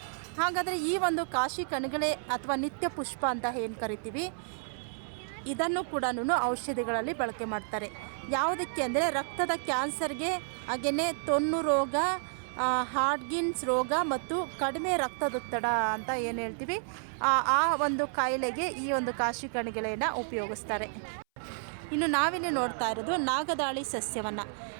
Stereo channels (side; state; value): left; silent; 57 dB below the other